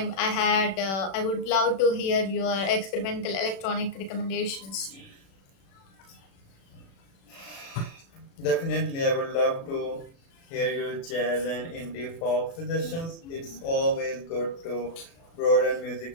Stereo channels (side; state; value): right; late; 36 ms